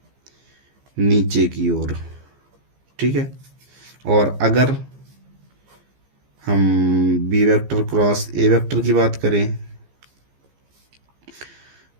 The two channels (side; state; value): left; late; 15 ms